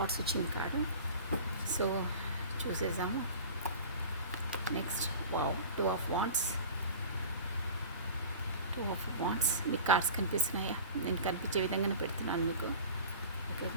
వచ్చింది కార్డు. సో చూసేసాము. Next wow, 2 of Wands. 2 of Wands. మీకు కార్డ్స్ కనిపిస్తున్నాయా? నేను కనిపించే విధంగానే పెడుతున్నాను మీకు. ఓకే,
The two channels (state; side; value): inverted; both; correlation -0.39